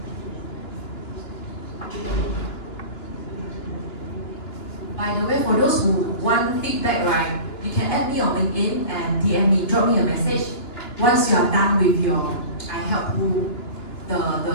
By the way, for those who want feedback, right, you can add me on LinkedIn and DM me, drop me a message. Once you are done with your, I help you the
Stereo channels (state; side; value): late; right; 2.9 ms